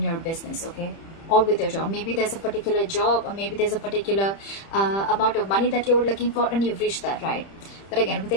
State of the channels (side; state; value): right; late; 30 ms